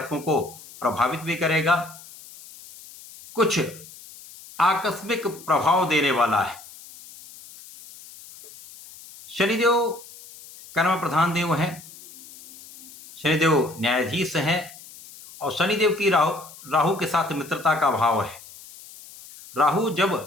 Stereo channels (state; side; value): noise; left; hiss, 19 dB below the sound